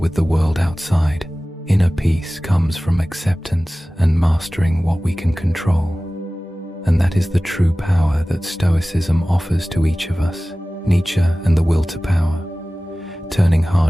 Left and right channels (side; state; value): both; normal; correlation 0.97